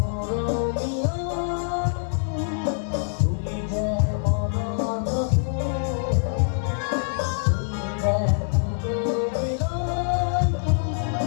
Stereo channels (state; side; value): silent; right; digital silence